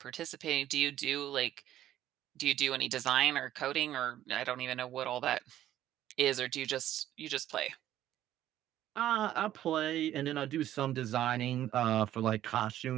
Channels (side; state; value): left; quieter; 12.6 dB